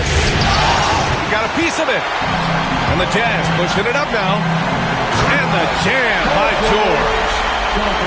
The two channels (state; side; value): identical; both; correlation 1.00